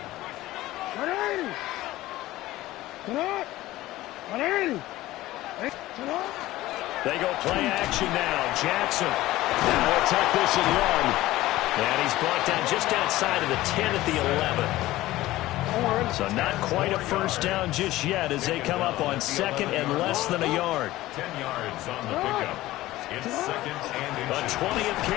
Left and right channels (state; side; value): quieter; right; 16.7 dB